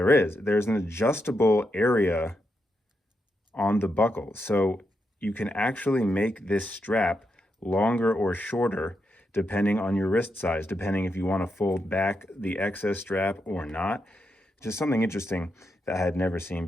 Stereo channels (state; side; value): normal; both; correlation 0.84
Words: adjustable area on the buckle. So you can actually make this strap longer or shorter depending on your wrist size, depending if you want to fold back the excess strap or not. Just something interesting that I had never seen